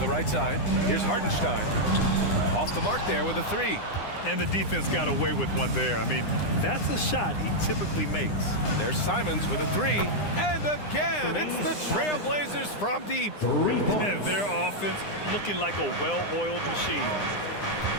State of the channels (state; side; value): late; right; 9.8 ms